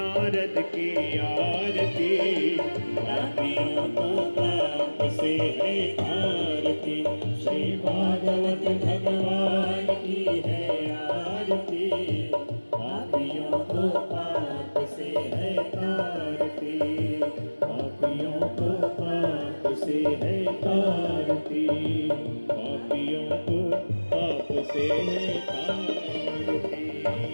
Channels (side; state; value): both; inverted; correlation -1.00